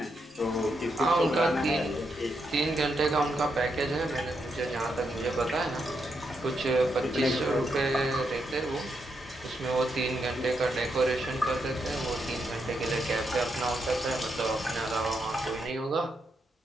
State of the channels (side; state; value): both; normal; correlation 0.81